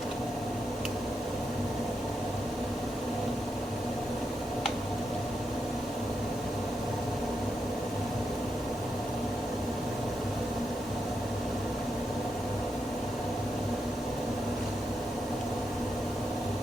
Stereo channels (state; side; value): normal; both; correlation 0.84